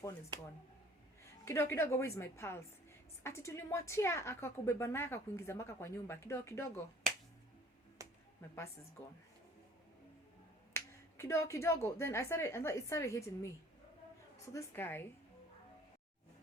phone is gone. Kidogo, where is my pulse? Ati tulimwachia akakubeba naye akakuingiza maka kwa nyumba. Kidogo, my purse is gone. Kidogo, then it started hitting me. So this guy,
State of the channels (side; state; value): both; normal; correlation 0.54